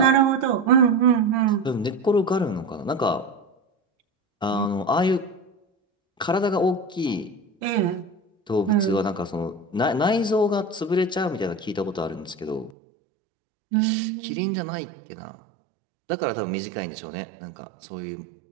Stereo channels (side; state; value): left; drops out; at 12.7 s